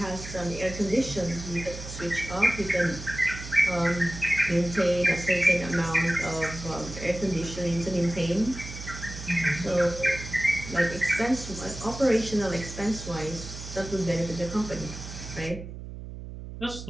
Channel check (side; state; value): right; noise; hum, 11 dB below the sound